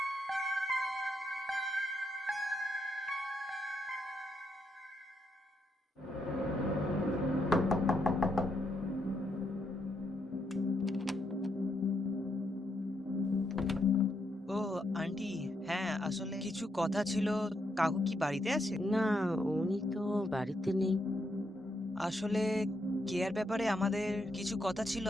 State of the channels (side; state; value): both; normal; correlation 0.79